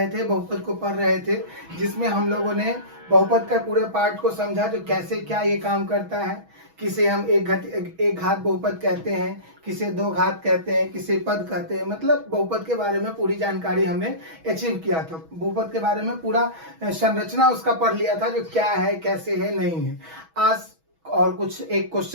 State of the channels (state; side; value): late; left; 6.2 ms